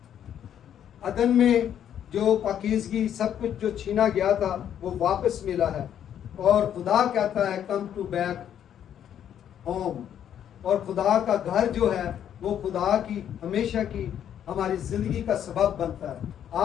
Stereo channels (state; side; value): quieter; right; 9.8 dB